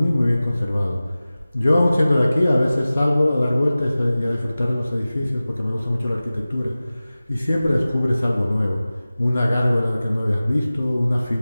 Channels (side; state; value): both; inverted; correlation -0.97